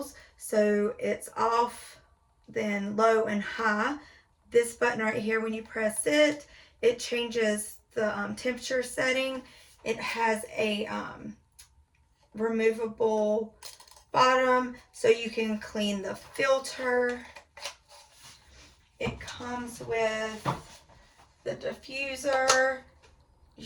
So it's off, then low and high. This button right here, when you press it, it changes the temperature setting. It has a removable bottom so you can clean the filter. It comes with the diffuser. You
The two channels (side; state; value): both; identical; correlation 1.00